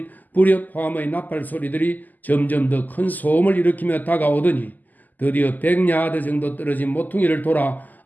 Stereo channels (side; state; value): right; late; 0.083 ms